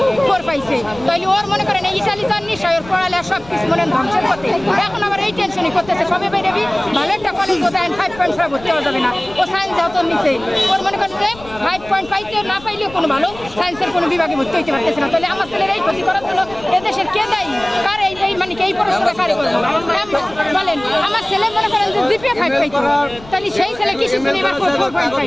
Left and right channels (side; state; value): left; noise; rumble, 19 dB below the sound